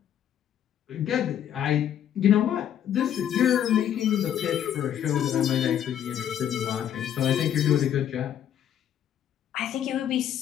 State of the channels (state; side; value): quieter; right; 10.1 dB